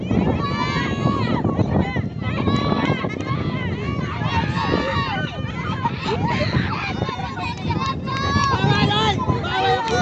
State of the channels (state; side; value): identical; both; correlation 1.00